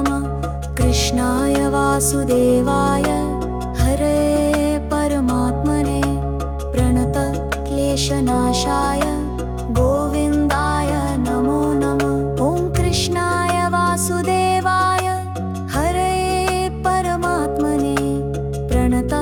कृष्णाय वासुदेवाय हरे परमात्मने प्रणतक्लेशनाशाय गोविन्दाय नमो नमः। ॐ कृष्णाय वासुदेवाय हरे परमात्मने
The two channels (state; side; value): identical; both; correlation 1.00